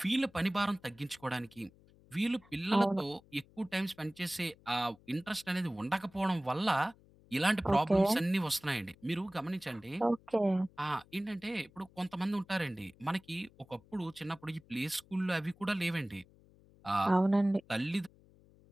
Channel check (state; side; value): noise; left; hum, 27 dB below the sound